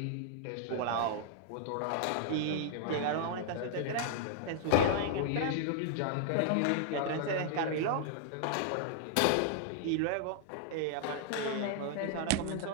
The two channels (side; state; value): both; different; correlation -0.01